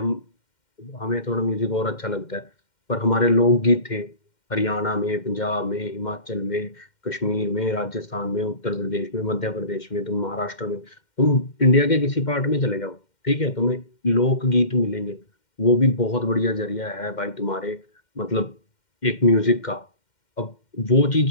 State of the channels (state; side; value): late; right; 2.1 ms